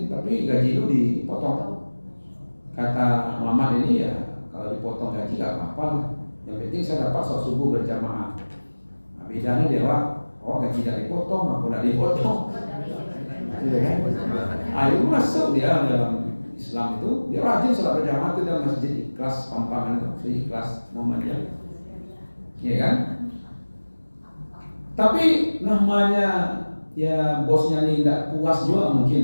tapi gaji lu dipotong. Kata Muhammad ini ya, kalau dipotong gaji gak apa-apa lah. Yang penting saya dapat sholat subuh berjamaah. Nah, bedanya dia, gaji gak dipotong, aku gak dipotong. Iya kan? Ayo masuk dia dalam Islam itu, dia rajin sholat berjamaah itu dalam masjid Ikhlas Pampangan itu, Ikhlas Muhammadiyah, ya kan? Tapi namanya ya bosnya ini tidak puas juga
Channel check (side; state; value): both; inverted; correlation -1.00